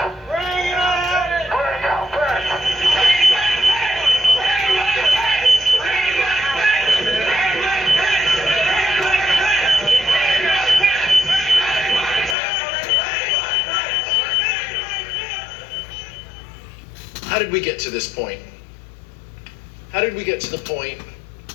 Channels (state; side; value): drops out; right; at 12.4 s